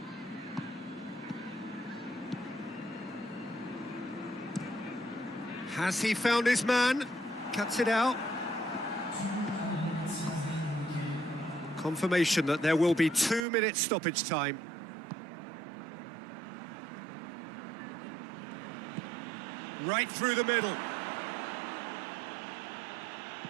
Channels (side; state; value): left; drops out; at 13.5 s